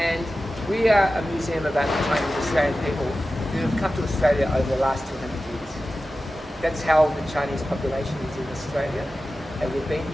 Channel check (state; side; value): normal; both; correlation 0.94